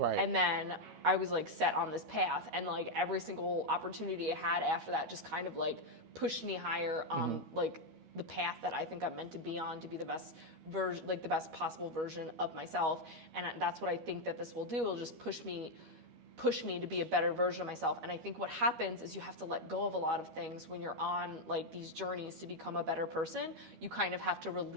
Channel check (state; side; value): late; left; 12 ms